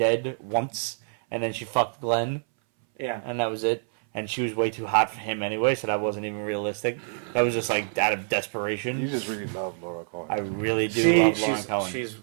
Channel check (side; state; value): left; silent; 61 dB below the other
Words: once, and then she fucked Glenn, Yeah. and that was it. And she was way too hot for him anyway, so that wasn't even realistic. That was just like out of desperation. You just really love Laura Cohen. I really do love Lauren Cohen. She's